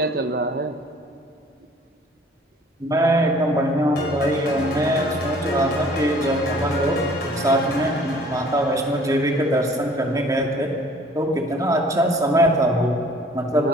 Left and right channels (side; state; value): both; normal; correlation 0.53